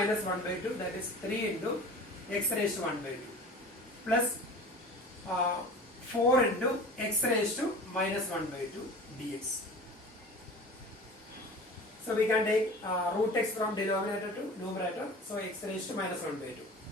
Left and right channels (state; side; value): normal; both; correlation 0.38